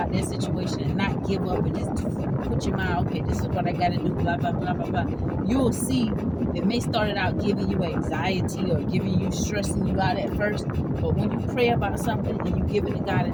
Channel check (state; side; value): identical; both; correlation 1.00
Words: that situation and not give up and just put your mind, okay, this is what I got to do, blah, blah, blah, blah, blah. You'll see it may start out giving you anxiety or giving you, stressing you out at first, but when you pray about something and you give it to God